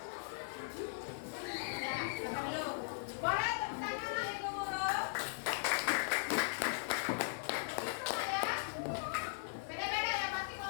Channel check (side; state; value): right; silent; digital silence